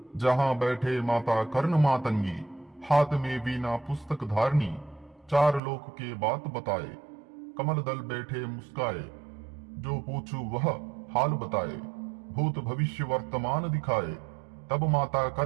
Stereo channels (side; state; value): left; drops out; at 5.6 s